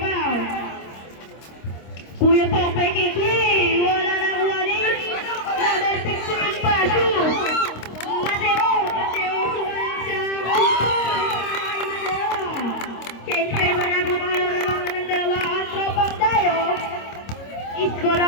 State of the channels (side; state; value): right; late; 26 ms